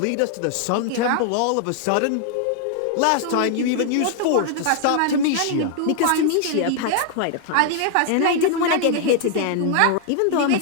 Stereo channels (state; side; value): different; both; correlation 0.00